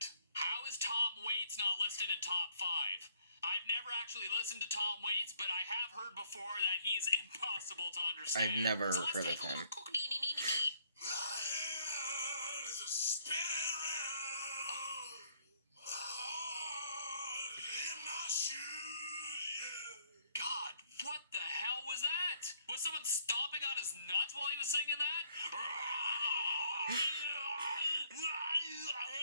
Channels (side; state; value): both; inverted; correlation -0.65